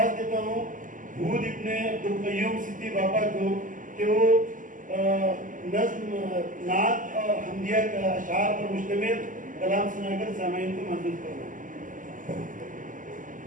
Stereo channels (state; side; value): late; left; 0.38 ms